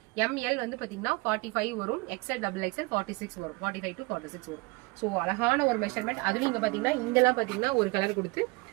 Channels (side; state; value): left; quieter; 26.3 dB